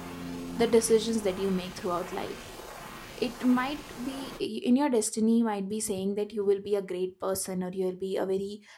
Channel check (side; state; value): both; identical; correlation 1.00